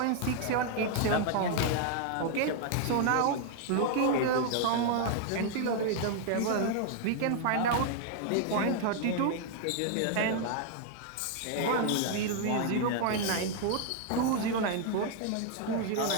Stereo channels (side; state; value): both; different; correlation 0.00